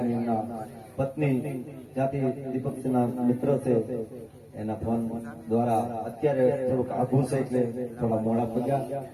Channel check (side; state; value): both; identical; correlation 1.00